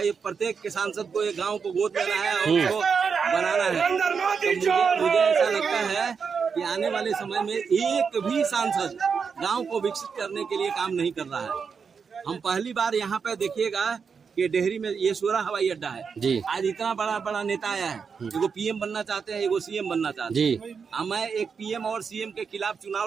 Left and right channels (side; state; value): left; quieter; 5.9 dB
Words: प्रत्येक के सांसद को एक गांव को गोद लेना है और उसको बनाना है। तो मुझे ऐसा लगता है कि आने वाले समय में एक भी सांसद गांव को विकसित करने के लिए काम नहीं कर रहा है। हम पहली बार यहाँ पे देखिएगा कि डेहरी में ये सोरा हवाई अड्डा है जी। आज इतना बड़ा बड़ा नेता आया है, एगो पीएम बनना चाहते हैं, एगो सीएम बनना चाहते हैं जी। मैं एक पीएम और सीएम के खिलाफ चुनाव